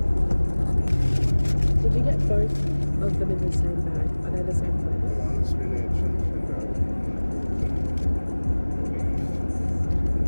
Did you get both of them in the same bag? Are they the same flavour? One spinach and potato.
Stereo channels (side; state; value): both; inverted; correlation -1.00